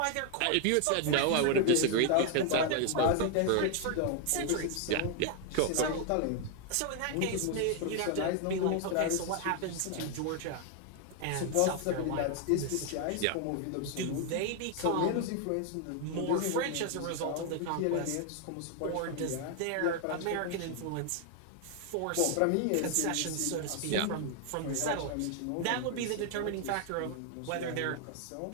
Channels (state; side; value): different; both; correlation 0.00